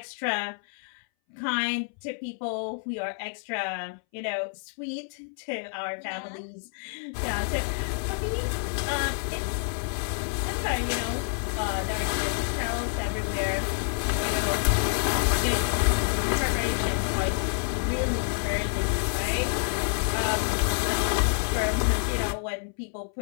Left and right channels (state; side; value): silent; right; 59 dB below the other